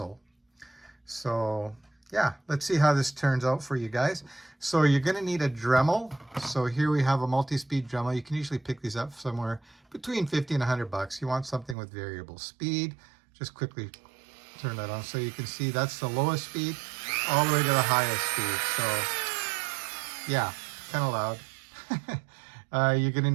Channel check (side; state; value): left; drops out; at 11.8 s